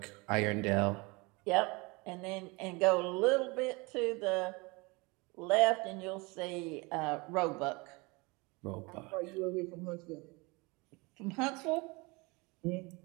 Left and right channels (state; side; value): quieter; left; 26.4 dB